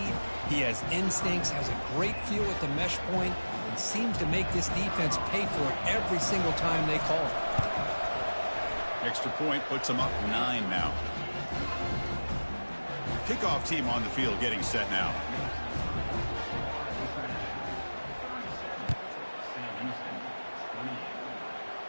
he has instincts, has a great feel at the mesh point, and seems to make this defense pay for it every single time they call it. Extra point puts them up 9 now. Kickoff team on the field getting set now.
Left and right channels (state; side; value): inverted; both; correlation -1.00